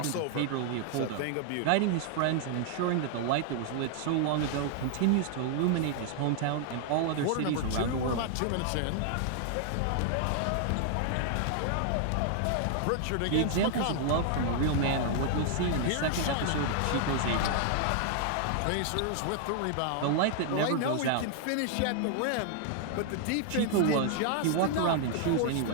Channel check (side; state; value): both; different; correlation 0.00